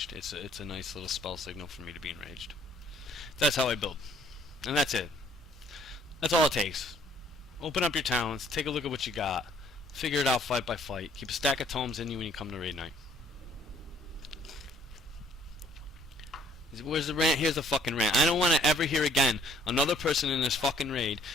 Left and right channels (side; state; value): both; normal; correlation 0.61